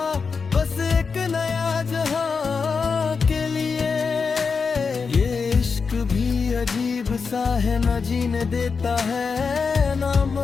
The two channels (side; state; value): right; quieter; 5.2 dB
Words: बस एक नया जहां के लिए। ये इश्क भी अजीब सा है, न जीने देता है ना